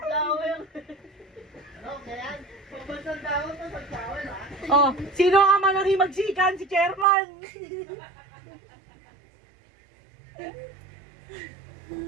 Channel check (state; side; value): drops out; left; at 7.1 s